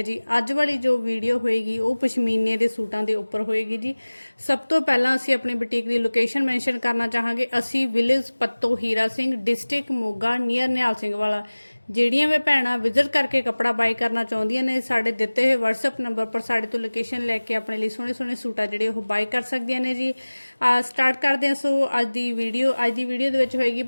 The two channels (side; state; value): both; inverted; correlation -1.00